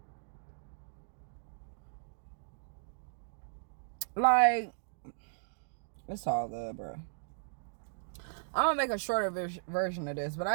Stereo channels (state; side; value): silent; left; digital silence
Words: Like, it's all good, bro. I'm gonna make a shorter version of this, but